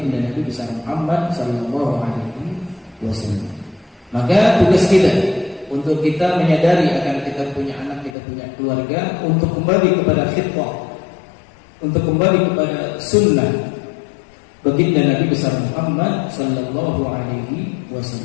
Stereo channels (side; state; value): right; drops out; at 8.2 s